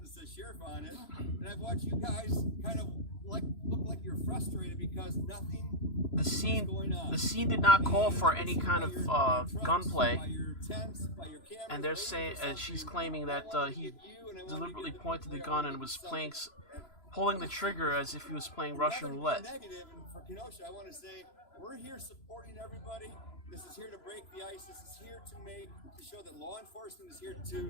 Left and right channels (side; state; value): right; late; 3.0 ms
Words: that says sheriff on it, and I've watched you guys kind of look like you're frustrated because nothing is going on. The scene did not call for any kind of gunplay, and they're saying, and she's claiming that he deliberately pointed the gun and was pulling the trigger as if he was playing Russian roulette. Negative, and for Kenosha, I want to say we're here supporting everybody. This is here to break the ice. This is here to show that law enforcement is here